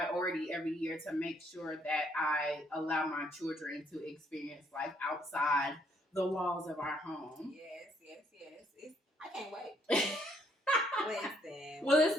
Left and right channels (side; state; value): both; normal; correlation 0.69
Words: every year to make sure that I allow my children to experience life outside the walls of our home. Yes. I can't wait. Listen. Will this